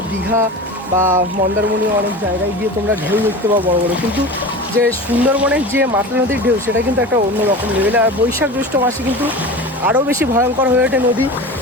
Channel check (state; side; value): normal; both; correlation 0.32